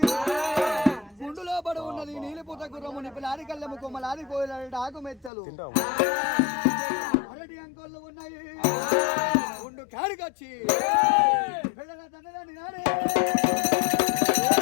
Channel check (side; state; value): right; drops out; at 5.3 s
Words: గుండులో పడి ఉన్నది నీలిపుత గుర్రము నిపిలాది కళ్ళెము కొమ్మలాది కోయిలాడి ఆకు మెత్తలు అరటి అంకోళ్ళు ఉన్నాయి గుండు కాడికొచ్చి పిల్లల తండ్రి నాడే